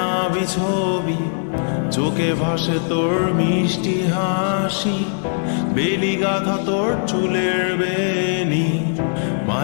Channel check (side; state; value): right; silent; 66 dB below the other